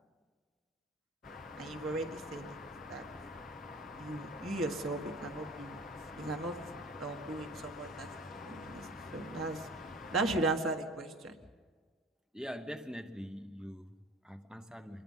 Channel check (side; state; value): both; normal; correlation 0.43